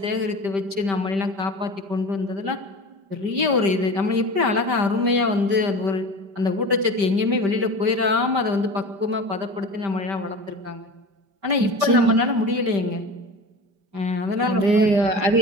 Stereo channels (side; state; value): left; late; 5.1 ms